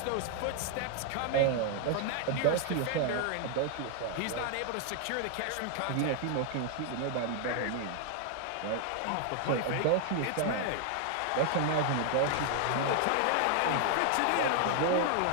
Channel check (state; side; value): different; both; correlation 0.00